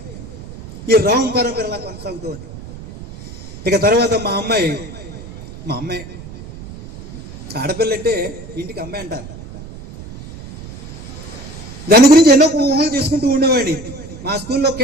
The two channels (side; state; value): right; noise; rumble, 14 dB below the sound